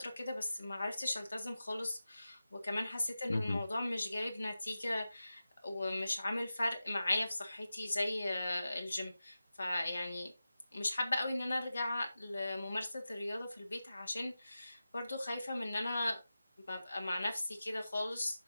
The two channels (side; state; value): both; inverted; correlation -0.94